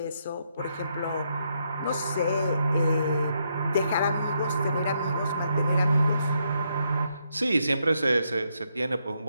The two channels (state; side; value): inverted; both; correlation -0.78